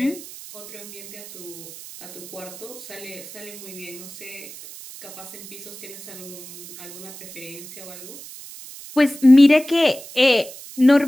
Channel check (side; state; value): right; noise; hiss, 15 dB below the sound